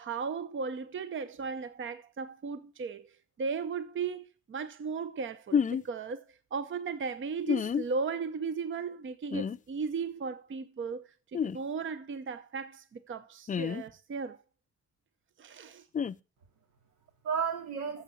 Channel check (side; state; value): both; normal; correlation 0.12